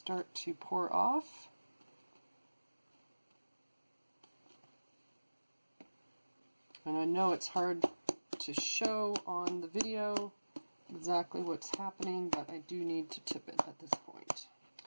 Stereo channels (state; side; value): inverted; both; correlation -1.00